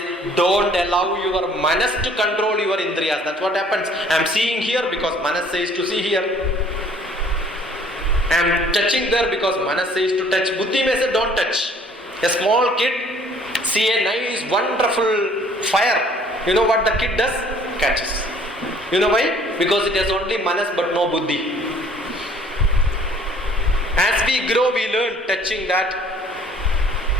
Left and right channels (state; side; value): normal; both; correlation 0.56